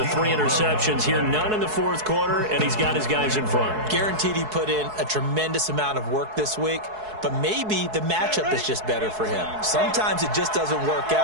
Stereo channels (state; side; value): late; left; 4.7 ms